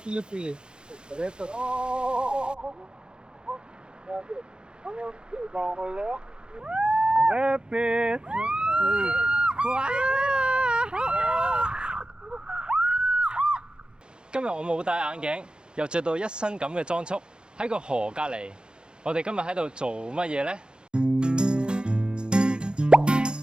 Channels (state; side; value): late; left; 0.049 ms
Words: Rapid. Wow. 今日我冇戴眼鏡，又着到一身咁嘅裝束，喺個河隔離。我哋今日喺度做乜嘢呢？